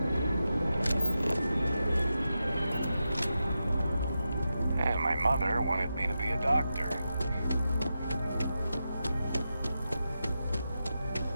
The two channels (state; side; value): inverted; both; correlation -0.90